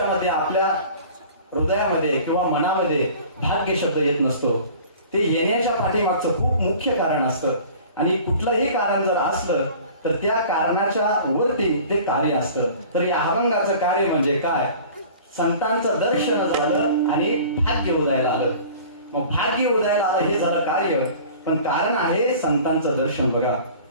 आपल्या हृदयामध्ये किंवा मनामध्ये भाग्य शब्द येत नसतो. ते येण्याच्या पाठीमागचं खूप मुख्य कारण असतं आणि कुठलंही कारण जर असलं तर त्या कारणाच्या वरती ते कार्य असतं. तर या अभंगाचं कार्य म्हणजे काय, संतांचं दर्शन झालं आणि भाग्य उदयाला आलं. मग भाग्य उदयाला आलं हे झालं कार्य, पण कारण आहे संतांचं दर्शन. बघा,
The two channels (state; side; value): inverted; both; correlation -0.44